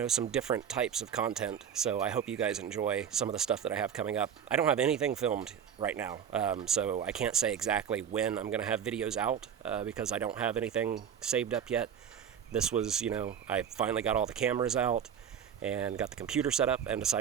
some different types of content, so I hope you guys enjoy some of the stuff that I have coming up. I don't have anything filmed right now, so I can't say exactly when I'm going to have videos out, because I don't have anything saved up yet. This was, I finally got all the cameras out and got the computer set up and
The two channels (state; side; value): quieter; left; 8.4 dB